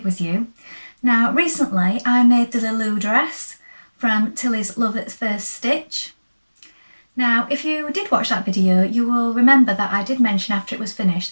with you. Now recently I made the Lilou dress from Tilly's Love at First Stitch. Now if you did watch that video you will remember that I did mention after it was finished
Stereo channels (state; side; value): inverted; both; correlation -1.00